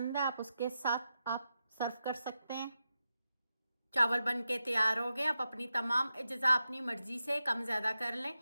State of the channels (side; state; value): both; inverted; correlation -0.89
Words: है आप उसके साथ आप सर्व कर सकते हैं। चावल बन के तैयार हो गए। आप अपनी तमाम अज़्ज़ा अपनी मर्ज़ी से कम ज़्यादा कर लें।